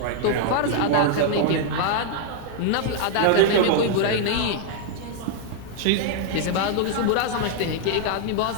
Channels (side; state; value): both; different; correlation 0.00